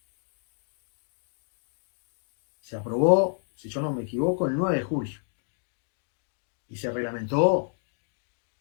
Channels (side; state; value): right; silent; digital silence